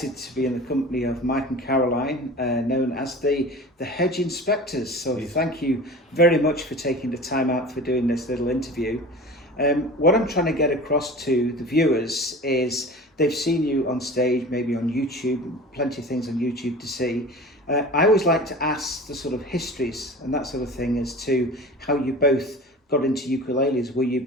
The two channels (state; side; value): normal; both; correlation 0.37